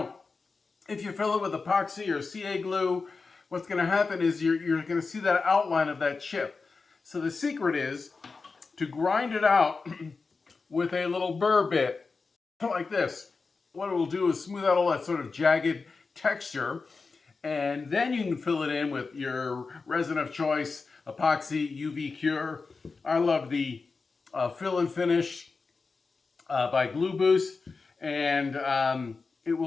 if you fill it with epoxy or CA glue, what's going to happen is you're going to see that outline of that chip. So the secret is to grind it out with a little burr bit, like this. What it will do is smooth out all that sort of jagged texture, and then you can fill it in with your resin of choice, epoxy, UV cure. I love the fill and finish by Glue Boost, and it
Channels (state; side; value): quieter; right; 4.4 dB